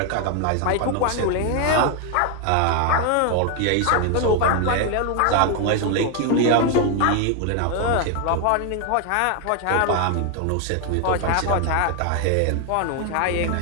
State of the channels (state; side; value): different; both; correlation 0.01